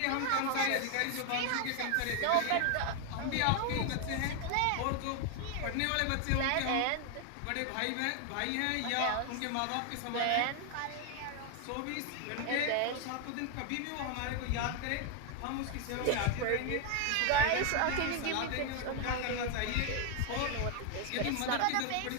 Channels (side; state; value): both; different; correlation 0.01